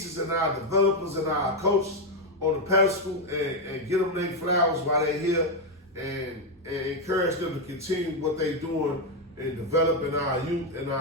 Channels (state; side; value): normal; both; correlation 0.04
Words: and our developers and our coaches on the pedestal and get them their flowers while they're here and encourage them to continue what they're doing in developing our youth and